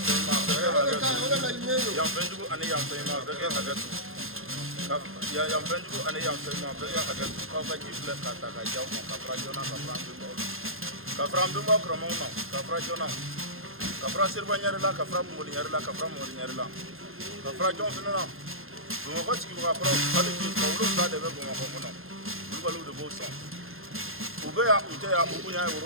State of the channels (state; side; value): late; left; 0.61 ms